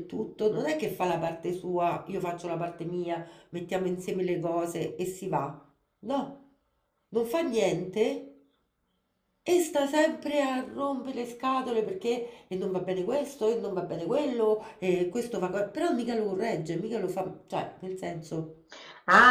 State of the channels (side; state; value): both; identical; correlation 1.00